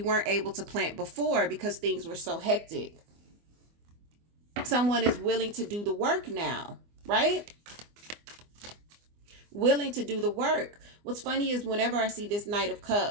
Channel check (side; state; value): left; late; 24 ms